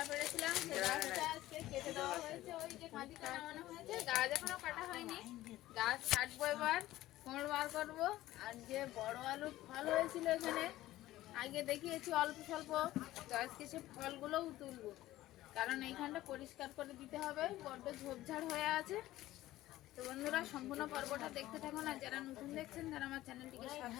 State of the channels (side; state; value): right; quieter; 15.7 dB